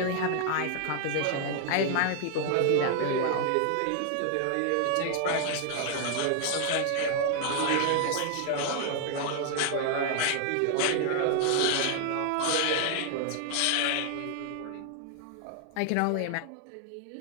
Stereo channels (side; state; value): both; different; correlation 0.00